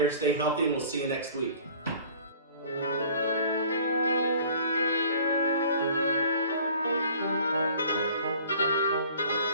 stay healthy, and we'll see you next week.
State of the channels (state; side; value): inverted; both; correlation -0.50